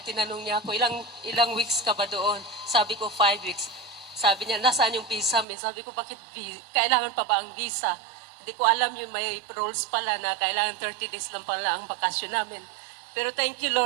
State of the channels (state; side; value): drops out; left; at 5.5 s